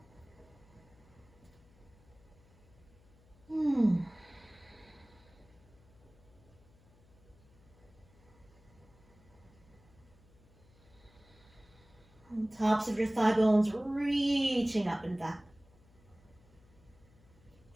Tops of your thigh bones reaching up and back.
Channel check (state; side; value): noise; left; hum, 27 dB below the sound